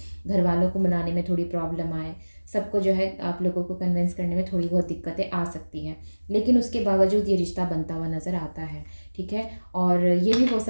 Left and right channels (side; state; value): both; inverted; correlation -1.00